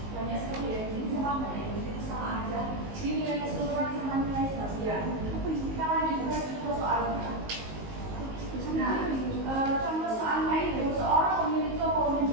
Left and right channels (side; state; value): left; late; 19 ms